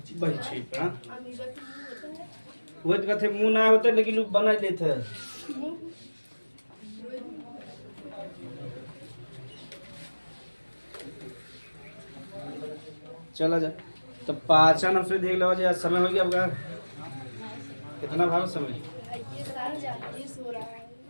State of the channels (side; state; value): both; inverted; correlation -1.00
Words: बहिक्षेपण। वो कहते मुंह ना होता लेकिन लोग बना लेते हैं। चला जा तो पाचन हमसे देख लो, समय हो गया आपका कितना भाव समय